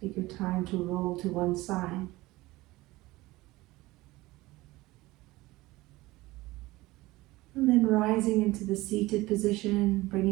Take your time to roll to one side. And then rising into the seated position,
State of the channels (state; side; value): quieter; left; 19.5 dB